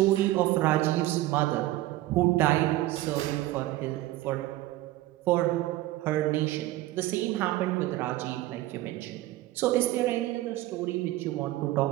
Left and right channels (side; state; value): left; quieter; 16.3 dB